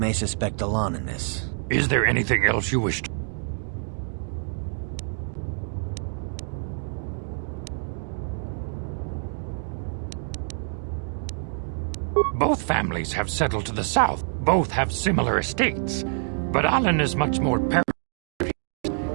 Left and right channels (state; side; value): silent; left; 61 dB below the other